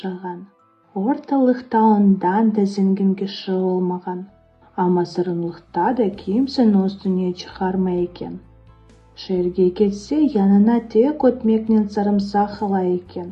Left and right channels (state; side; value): identical; both; correlation 1.00